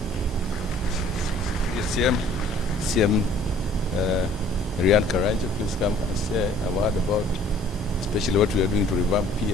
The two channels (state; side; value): normal; both; correlation 0.54